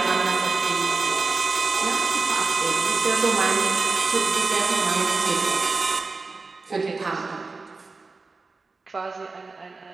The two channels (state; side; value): quieter; left; 4.0 dB